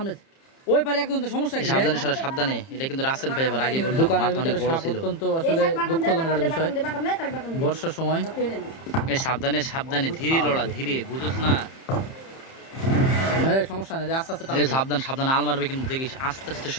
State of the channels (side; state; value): right; late; 30 ms